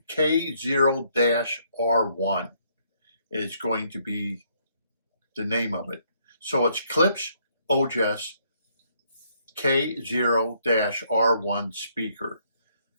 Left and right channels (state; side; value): inverted; both; correlation -0.69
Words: K0-R1 is going to be the name of it. So it's Klipsch Ojas K0-R1 speaker.